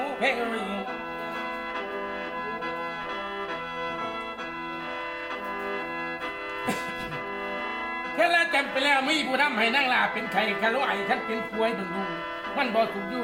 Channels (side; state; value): both; identical; correlation 1.00